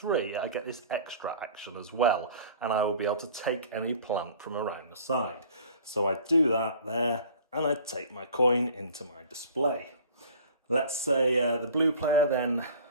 I get this extra action as well, and I will be able to take any plant from around the side. So I do that there, and I take my coin into my display. Let's say the blue player then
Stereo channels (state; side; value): inverted; both; correlation -0.46